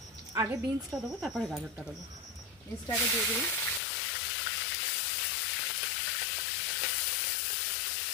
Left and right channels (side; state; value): right; drops out; at 3.8 s